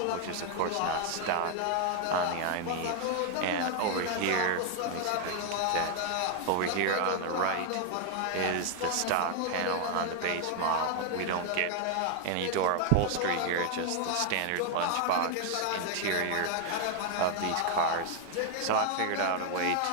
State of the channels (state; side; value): different; both; correlation 0.00